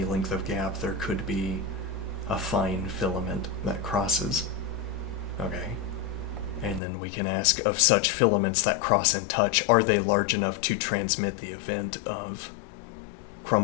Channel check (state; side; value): drops out; right; at 6.8 s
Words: length of gap there could be a fine filament that crosses. Okay. And then we can ask, of such filaments that cross and touch, are they large enough to transmit the event of